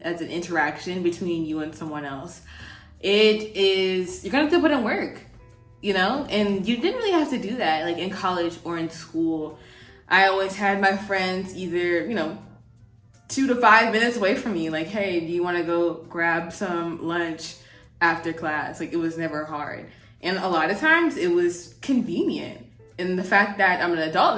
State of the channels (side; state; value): both; identical; correlation 1.00